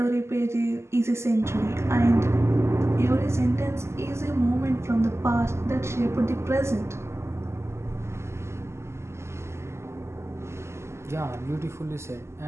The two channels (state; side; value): late; left; 0.13 ms